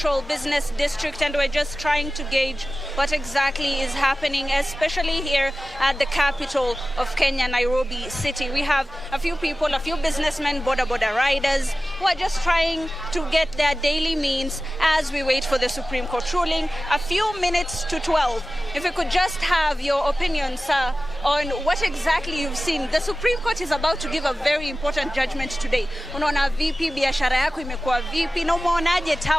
Business District and we're just trying to gauge what exactly is happening, especially here at the capital of Kenya, Nairobi City. We have a few people, a few businessmen, boda riders, who are just trying to get their daily means as we wait for the Supreme Court ruling. A few minutes to 12. If we could just have your opinion, sir, on what exactly you've seen. The Supreme Court is about to give a very important judgment today. Unaona vipi biashara yako imekuwa vipi na umeonaje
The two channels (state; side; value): normal; both; correlation 0.96